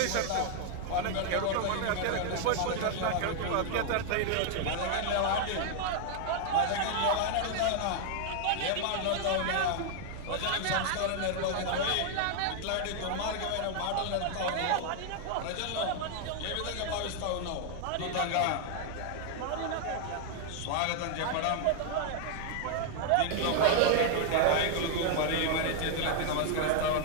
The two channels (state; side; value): different; both; correlation 0.00